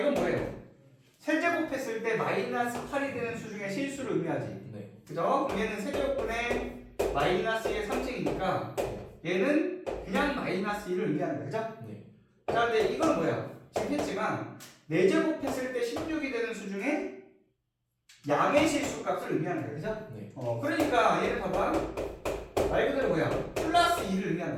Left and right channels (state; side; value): identical; both; correlation 1.00